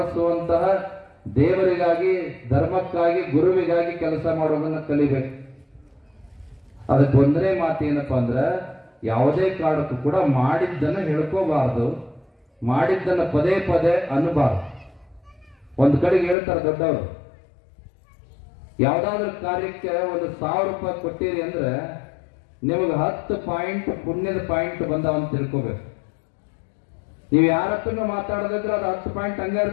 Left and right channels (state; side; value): drops out; right; at 16.4 s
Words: ದೇವರಿಗಾಗಿ, ಧರ್ಮಕ್ಕಾಗಿ, ಗುರುವಿಗಾಗಿ ಕೆಲಸ ಮಾಡೋದನ್ನ ಕಲಿಬೇಕು. ಅದಕ್ಕೆ ಒಂದನೇ ಮಾತು ಏನಪ್ಪಾ ಅಂದ್ರೆ, ಯಾವುದೇ ಕಾರಣಕ್ಕೂ ಕೂಡ ಮಾಡಿದ್ದನ್ನು ಹೇಳ್ಕೋಬಾರ್ದು, ಮಾಡಿದ್ದನ್ನು ಪದೇ ಪದೇ ಅನ್ನಬಾರ್ದು. ಒಂದು ಕಡೆಗೆ ಹೇಳ್ತಾರೆ ದೊಡ್ಡವರು, ಯಾವ್ದಾದ್ರು ಕಾರ್ಯಕ್ಕೆ 1,000 ರೂಪಾಯಿ ಕೊಟ್ಟಿರಿ ಅಂದ್ರೆ ನಿಮಗೆ 10 ಪಾಯಿಂಟ್ ಪುಣ್ಯದ ಪಾಯಿಂಟ್ ಬಂದಾವ ಅಂತ ತಿಳ್ಕೋಬೇಕು. ನೀವು ಯಾರ ಹತ್ರನೂ ಮಾತಾಡೋದಿದ್ರೆ ಅದು 10 ಪಾಯಿಂಟ್ ಹಂಗ